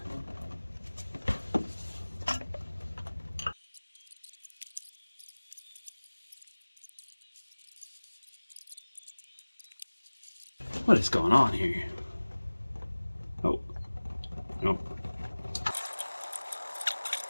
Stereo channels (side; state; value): both; inverted; correlation -1.00